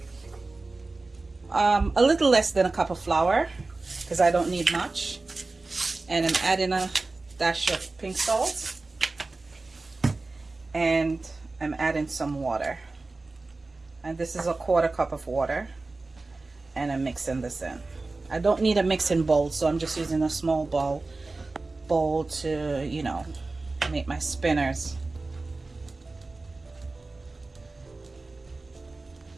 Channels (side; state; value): left; quieter; 3.4 dB